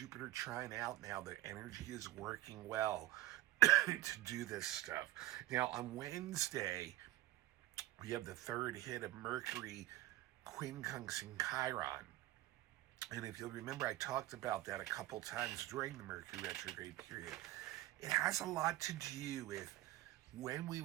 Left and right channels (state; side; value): quieter; left; 16.4 dB